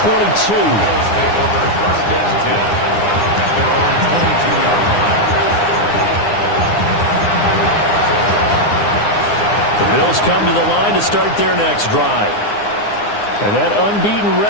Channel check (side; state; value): right; late; 9.7 ms